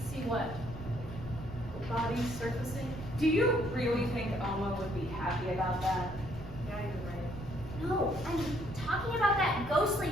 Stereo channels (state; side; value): noise; right; rumble, 11 dB below the sound